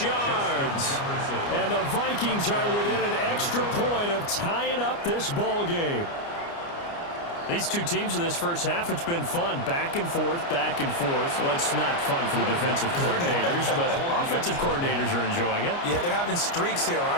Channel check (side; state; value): right; late; 29 ms